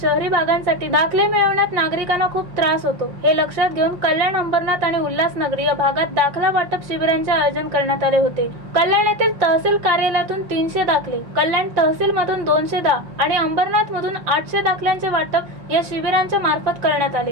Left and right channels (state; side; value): late; left; 5.6 ms